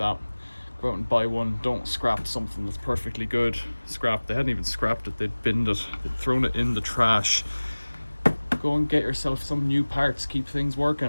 Go out and buy one. Don't scrap something that's perfectly good. Scrap. They hadn't even scrapped it. They'd binned it. They'd thrown it in the trash. Go and get yourself some new parts. Keep things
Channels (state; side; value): inverted; both; correlation -1.00